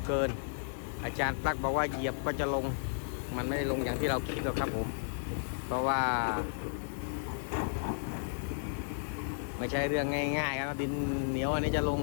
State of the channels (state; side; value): silent; right; 55 dB below the other